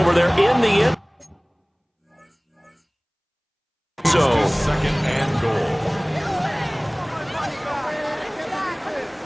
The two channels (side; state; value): both; identical; correlation 1.00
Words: there in the end. So 2nd and goal.